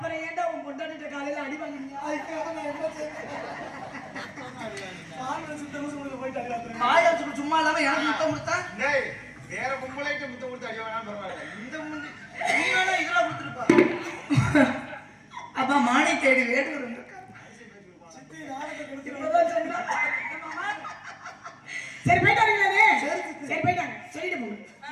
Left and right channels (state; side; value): identical; both; correlation 1.00